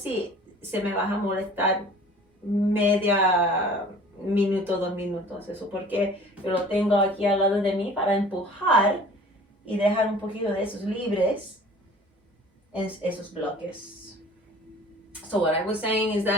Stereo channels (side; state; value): both; normal; correlation 0.47